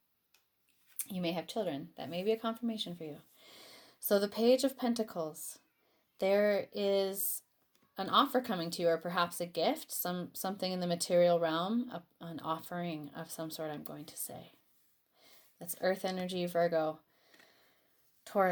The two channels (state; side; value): identical; both; correlation 1.00